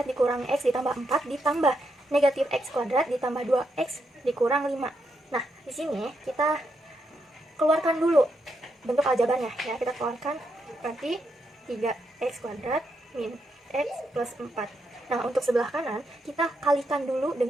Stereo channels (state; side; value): normal; both; correlation 0.81